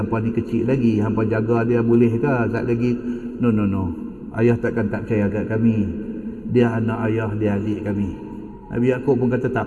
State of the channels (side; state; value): both; identical; correlation 1.00